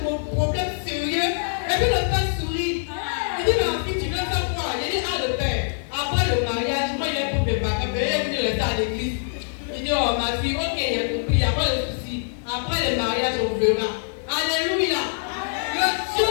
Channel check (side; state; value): right; silent; digital silence